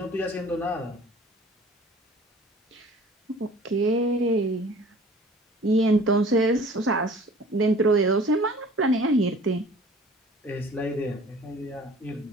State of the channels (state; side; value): normal; both; correlation 0.48